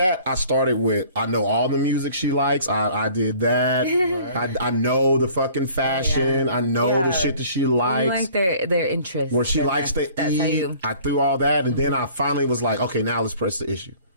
I started with, I know all the music she likes. I did that. Right. I know the fucking fashion. I know the shit that she likes. I like their interests. Where she likes to eat. I threw all that, and then I finally was like, okay, now let's press the issue.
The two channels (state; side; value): inverted; both; correlation -0.51